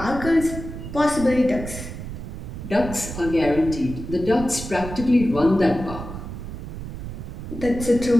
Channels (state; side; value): noise; right; rumble, 9 dB below the sound